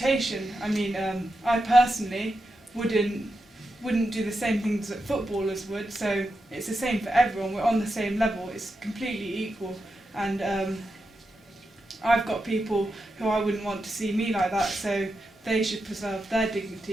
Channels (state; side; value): normal; both; correlation 0.88